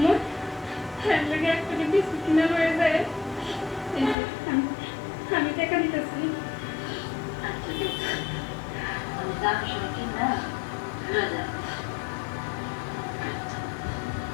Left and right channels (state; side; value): drops out; right; at 4.2 s